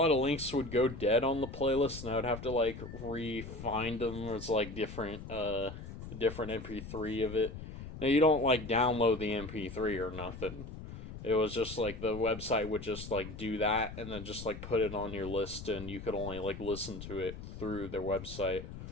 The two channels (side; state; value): left; noise; rumble, 10 dB below the sound